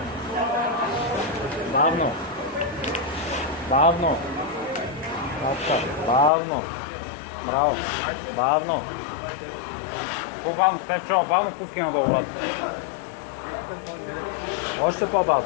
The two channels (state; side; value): drops out; right; at 6.3 s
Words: Бавно. Бавно. Браво. Бавно. По-бавно, Стефчо, бавно пускай надолу, брат. Още